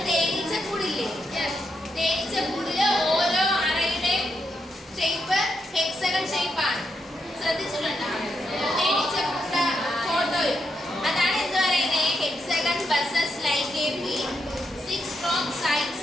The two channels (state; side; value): normal; both; correlation 0.82